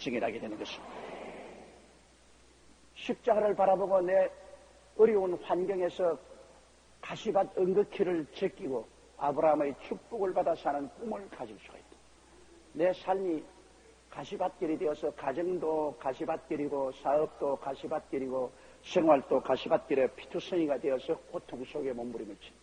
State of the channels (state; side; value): identical; both; correlation 1.00